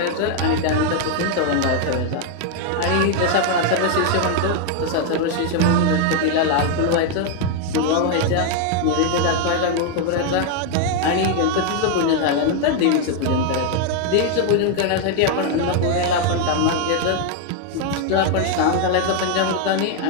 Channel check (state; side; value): different; both; correlation 0.00